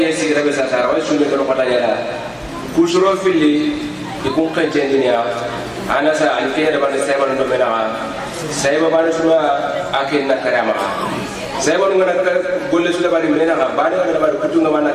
si rabe sa tara wa shume ko pata yara kusuro fili ikun kan jendinya ana sa alfiya da bana sai bana do mena sai ba bana suma akin na karama sai bana ngana golle su da bari mena ba da bari kutu ngama na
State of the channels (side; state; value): both; identical; correlation 1.00